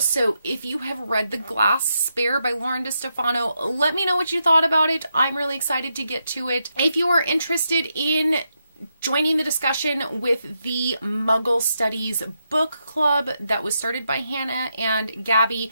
if you have read The Glass Spare by Lauren DeStefano, let me know what you thought about it. I'm really excited to get to it. If you are interested in joining the discussion with the Muggle Studies book club that was started by Hannah and Gabby,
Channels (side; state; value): both; inverted; correlation -0.83